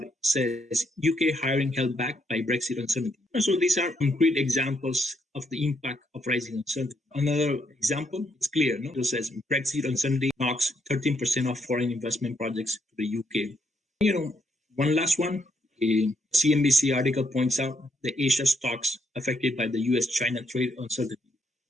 says, UK hiring held back by Brexit uncertainty. So these are concrete examples of the impact of rising uncertainty. Another example is clear. It says Brexit uncertainty knocks 13% of foreign investment projects to the UK. One last one, a CNBC article points out the Asia stocks affected by the US-China trade uncertainty.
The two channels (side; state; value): both; normal; correlation 0.75